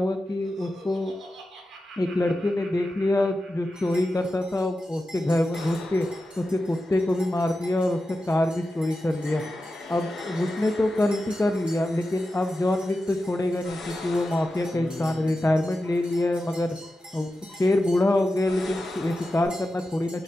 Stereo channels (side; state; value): both; normal; correlation 0.92